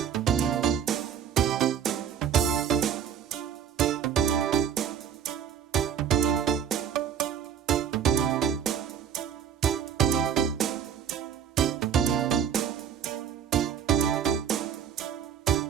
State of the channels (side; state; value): left; quieter; 8.4 dB